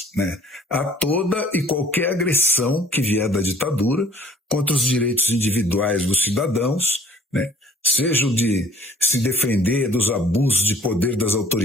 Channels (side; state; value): both; normal; correlation 0.53